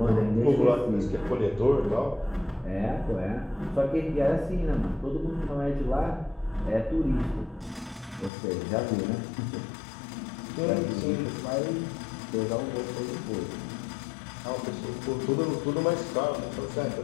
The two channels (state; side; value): drops out; right; at 8.3 s